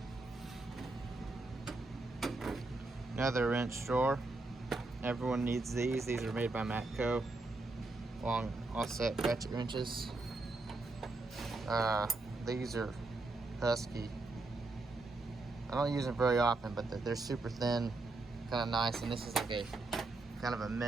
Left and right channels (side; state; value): left; quieter; 3.2 dB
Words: Another wrench drawer. Everyone needs these. These are made by Matco. Long offset ratchet wrenches. These are Husky. I don't use them very often, but they're super thin, kind of nice. And this is like a kind of a